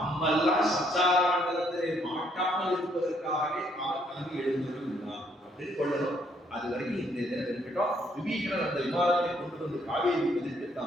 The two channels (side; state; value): both; normal; correlation 0.69